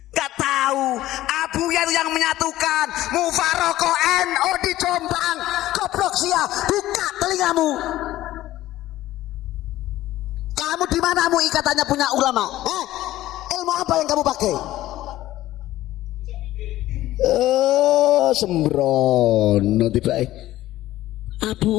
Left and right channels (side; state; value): right; quieter; 15.2 dB